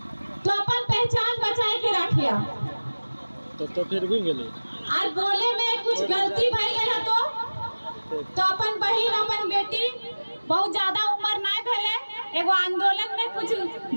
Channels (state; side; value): inverted; both; correlation -1.00